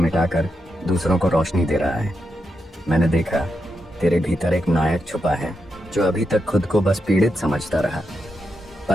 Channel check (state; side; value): normal; both; correlation 0.85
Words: दूसरों को रोशनी दे रहा है। मैंने देखा तेरे भीतर एक नायक छुपा है जो अभी तक खुद को बस पीड़ित समझता रहा।